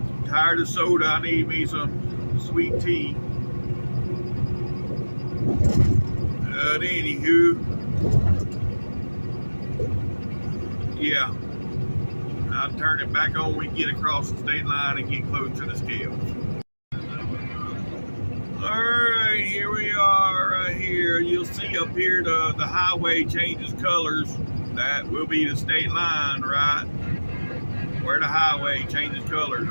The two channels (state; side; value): inverted; both; correlation -1.00